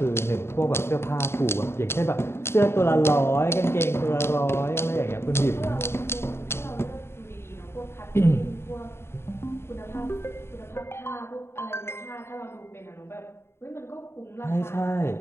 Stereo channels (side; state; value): right; late; 0.12 ms